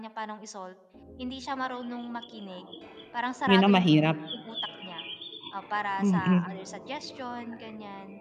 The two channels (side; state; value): both; identical; correlation 1.00